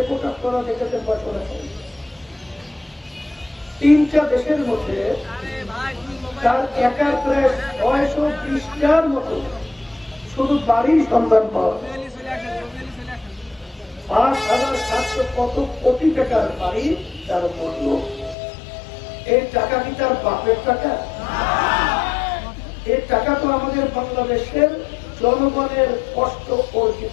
করা দেখেছেন, বছরেছেন 3টা দেশের মধ্যে তার একার প্রায় 620টার মতো শুধু বাড়ির সন্ধান পাওয়া, 5,700 কত কোটি টাকার বাড়ি তার মূল্য। এই টাকা কি তার বাপের টাকা? এই টাকা তো আমাদের বাংলাদেশের জনগণের কষ্ট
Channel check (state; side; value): drops out; right; at 18.4 s